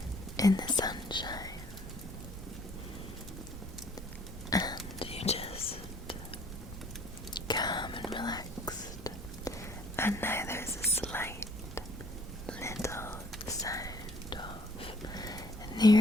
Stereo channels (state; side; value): normal; both; correlation 0.59